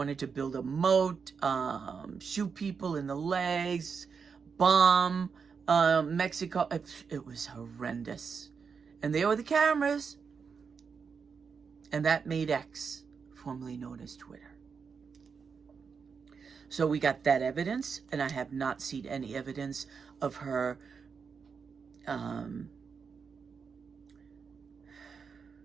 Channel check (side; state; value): left; quieter; 5.8 dB